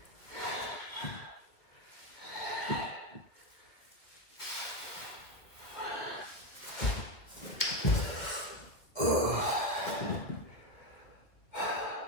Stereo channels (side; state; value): right; late; 2.4 ms